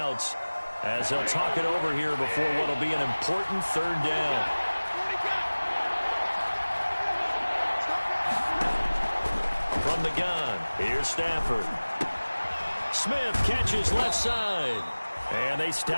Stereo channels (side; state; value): both; inverted; correlation -1.00